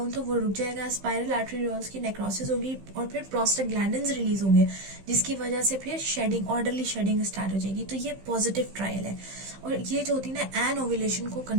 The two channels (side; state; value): left; late; 15 ms